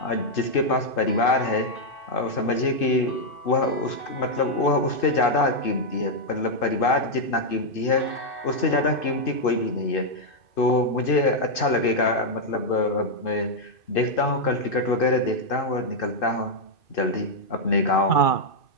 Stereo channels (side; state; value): right; late; 2.6 ms